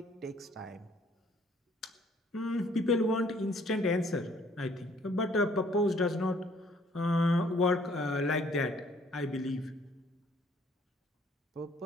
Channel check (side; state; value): both; normal; correlation 0.61